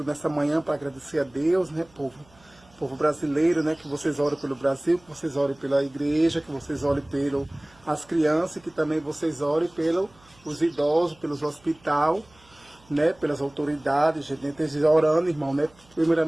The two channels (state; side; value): noise; right; hum, 29 dB below the sound